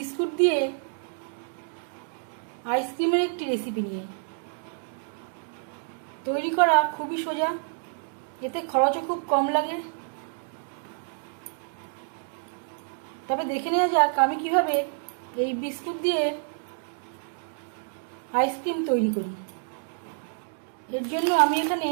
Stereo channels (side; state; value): left; silent; digital silence